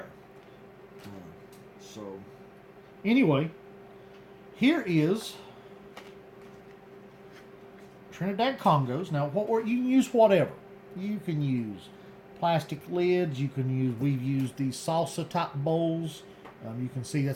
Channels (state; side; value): identical; both; correlation 1.00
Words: So anyway, here is Trinidad Congos. Now, you can use whatever. You can use plastic lids. We've used these salsa type bowls. You can see